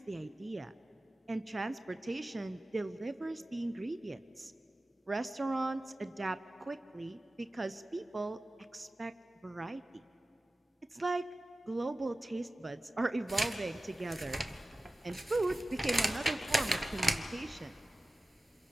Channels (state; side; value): normal; both; correlation 0.96